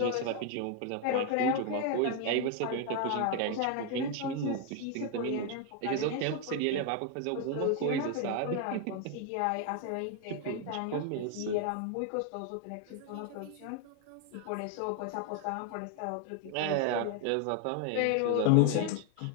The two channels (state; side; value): different; both; correlation 0.01